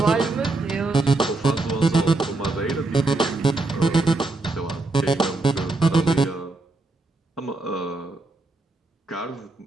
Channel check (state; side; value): quieter; left; 3.2 dB